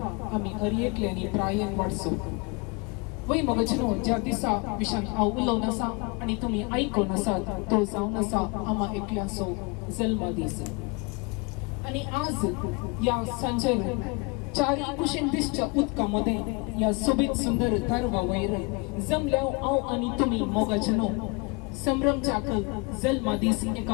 आमी हरयेंतल्यानी प्रायेन वाडचो. वय मगजनो ज्या दिसा विशान हांव उलोवन आसा आनी तुमी आयकून आसात तो जावन आसा आमा एकल्याचो जल्म दीस. आनी आज या सांजेर चारी कुशीन दिसच्या उदका मदें या सोबीत सुंदर तारवा वयर जमल्याव हांव आनी तुमी मोगाजनो संभ्रमच्याक जल्म दीस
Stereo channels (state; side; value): quieter; right; 29.2 dB